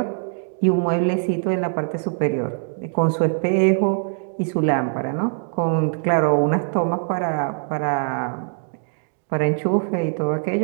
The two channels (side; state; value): left; silent; digital silence